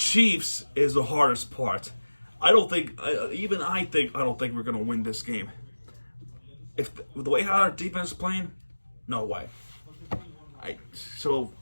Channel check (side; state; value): both; inverted; correlation -1.00